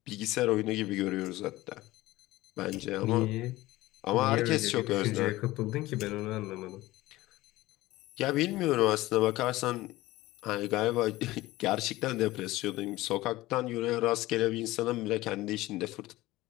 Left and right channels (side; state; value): right; quieter; 18.1 dB